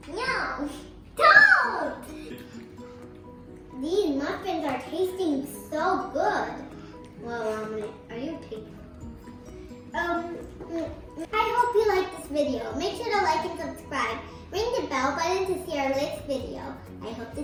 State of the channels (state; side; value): identical; both; correlation 1.00